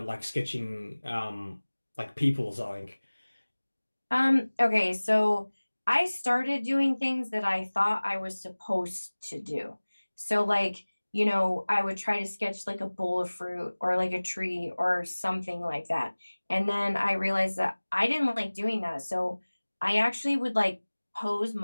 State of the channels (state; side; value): inverted; both; correlation -1.00